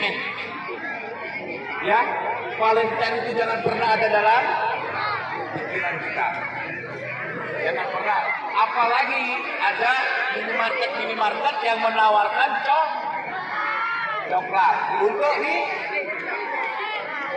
Ya, Valentine itu jangan pernah ada dalam pikiran kita. Jangan pernah. Apalagi ada minimarket yang menawarkan coklat untuk ini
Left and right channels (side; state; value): both; identical; correlation 1.00